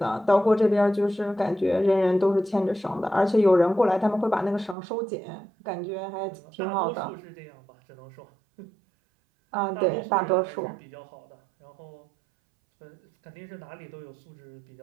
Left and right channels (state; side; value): drops out; left; at 4.8 s